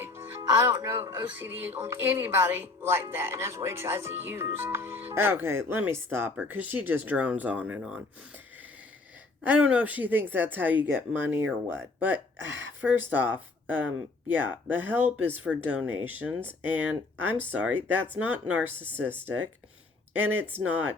I don't know OCD on anybody like that, and that's what he tries to use. Okay, let me stop her, because she just drones on and on. I don't know if she thinks that's how you get money or what, but first off, yeah, the help is for donations, and I'm sorry, that's not narcissistic, and it's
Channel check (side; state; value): right; quieter; 3.5 dB